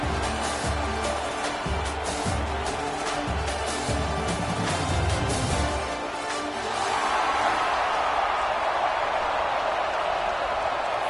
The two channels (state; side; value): identical; both; correlation 1.00